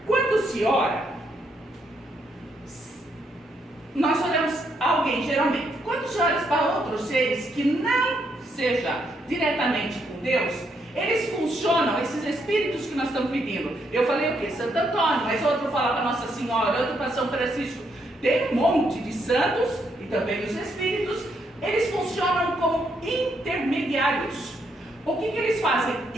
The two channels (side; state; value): both; normal; correlation 0.76